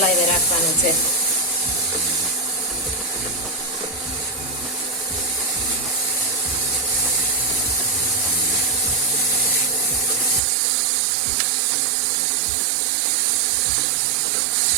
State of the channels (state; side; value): drops out; left; at 10.4 s